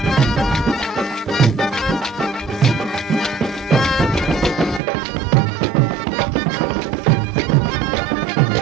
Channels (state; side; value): drops out; left; at 4.8 s